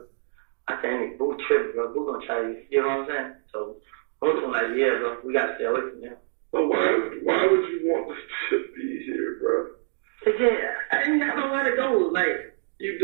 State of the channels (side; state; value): left; silent; digital silence